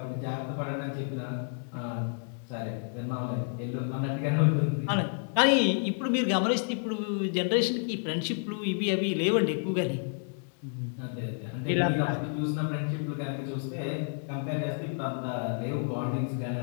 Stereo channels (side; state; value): right; silent; 55 dB below the other